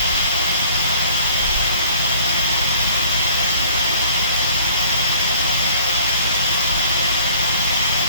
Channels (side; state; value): both; inverted; correlation -0.53